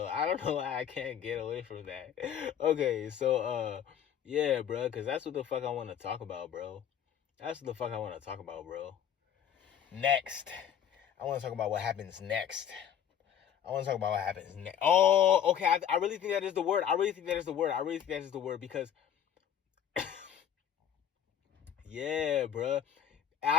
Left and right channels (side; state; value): right; quieter; 9.1 dB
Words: I don't know why I can't get away from that. Okay, so yeah, bro, because that's what the fuck I want to talk about, bro. That's what the fuck I want to talk about, bro. Next, I want to talk about what happens next. Oh, okay. I really think that is the word. Because, yeah, bro.